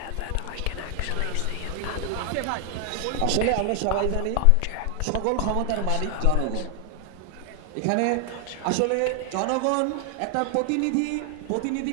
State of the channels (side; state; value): both; different; correlation 0.00